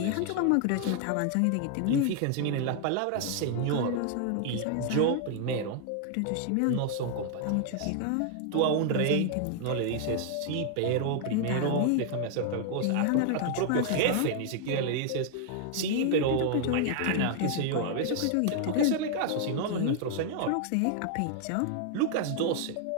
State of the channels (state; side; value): different; both; correlation 0.00